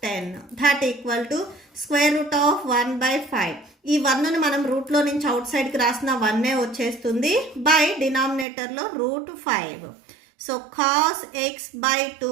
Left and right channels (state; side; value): drops out; left; at 8.5 s